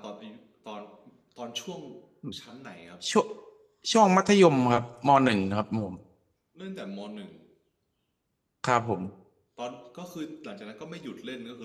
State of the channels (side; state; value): both; identical; correlation 1.00